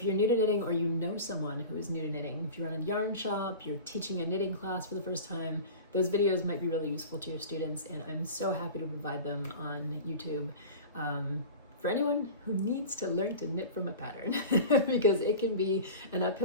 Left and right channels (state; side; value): inverted; both; correlation -0.34